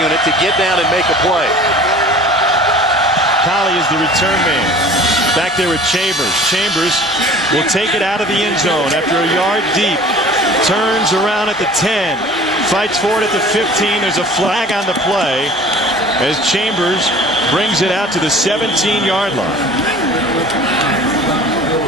to get down and make a play. Colley is the return man. Back there with Chambers. Chambers will take it out of the end zone after a yard deep. Turns around at the 10. Fights for it at the 15. There's a flag on the play as Chambers brings it out to the 17-yard line.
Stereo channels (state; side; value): normal; both; correlation 0.45